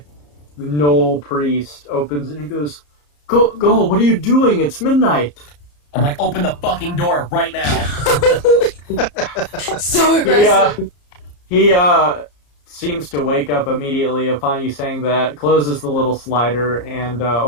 Knoll priest opens it and he goes, Go, what are you doing? It's midnight. I'm like, open the fucking door right now. So aggressive. He seems to wake up immediately upon you saying that, closes the little slider, and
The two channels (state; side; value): late; right; 34 ms